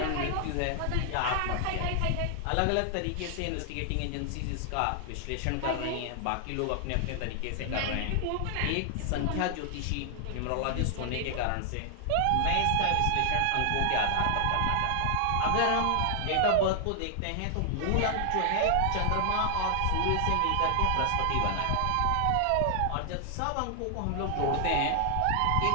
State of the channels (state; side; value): different; both; correlation 0.00